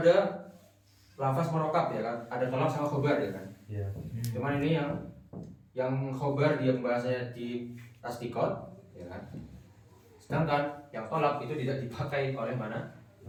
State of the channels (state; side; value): identical; both; correlation 1.00